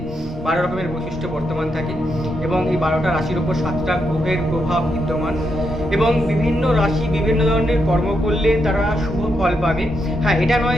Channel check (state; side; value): normal; both; correlation 0.82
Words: 12 রকমের বৈশিষ্ট্য বর্তমান থাকে এবং এই 12টা রাশির ওপর 7টা গ্রহের প্রভাব বিদ্যমান এবং বিভিন্ন রাশি বিভিন্ন ধরনের কর্ম করলে তারা শুভ ফল পাবে। হ্যাঁ, এটা